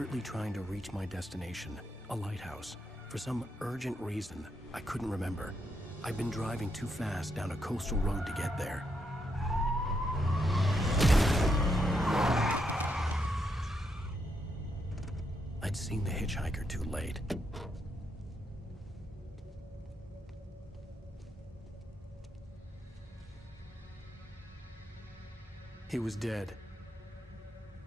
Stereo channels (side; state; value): both; normal; correlation 0.79